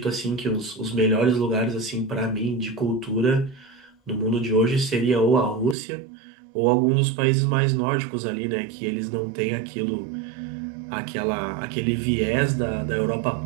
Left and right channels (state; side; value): drops out; left; at 5.8 s